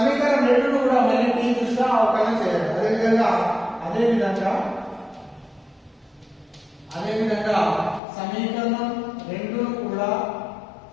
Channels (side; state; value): right; drops out; at 8.0 s